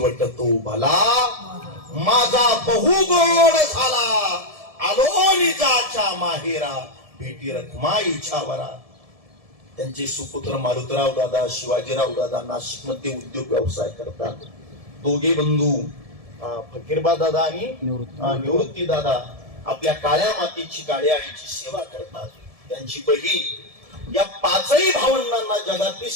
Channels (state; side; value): late; left; 1.7 ms